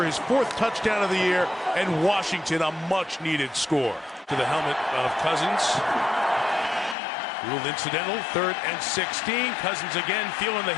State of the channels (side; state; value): right; drops out; at 7.0 s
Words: his 4th touchdown of the year, and Washington a much-needed score. To the helmet of Cousins. Ruled incidental, 3rd and 16. Cousins again feeling the